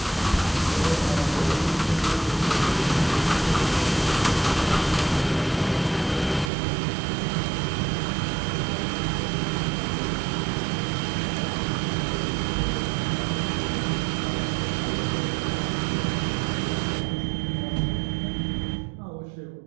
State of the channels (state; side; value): drops out; left; at 6.5 s